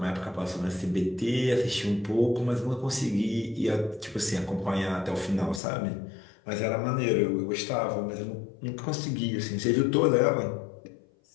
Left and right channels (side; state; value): right; drops out; at 5.6 s